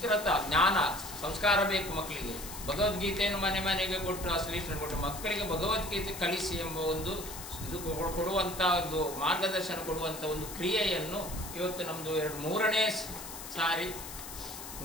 ಜ್ಞಾನ ಸಂಸ್ಕಾರ ಬೇಕು ಮಕ್ಕಳಿಗೆ. ಭಗವದ್ಗೀತೆಯನ್ನು ಮನೆಗೆ ಕೊಟ್ಟು ಆ ಶ್ರೀಕೃಷ್ಣ ಕೊಟ್ಟು ಮಕ್ಕಳಿಗೆ ಭಗವದ್ಗೀತೆ ಕಲಿಸಿ ಎಂಬ ಒಂದು ಇದು ಕೊಡುವಂಥ ಒಂದು ಮಾರ್ಗದರ್ಶನ ಕೊಡುವಂಥ ಒಂದು ಕ್ರಿಯೆಯನ್ನು ಇವತ್ತು ನಮ್ಮದು 3ನೇ ಸಾರಿ,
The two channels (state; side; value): noise; left; hiss, 11 dB below the sound